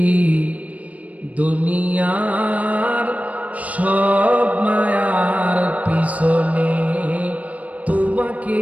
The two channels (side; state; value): left; late; 0.069 ms